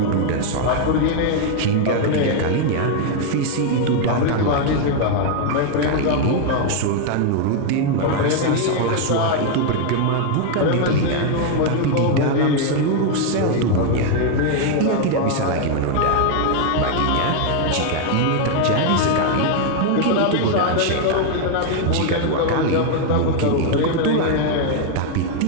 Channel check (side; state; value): both; different; correlation 0.00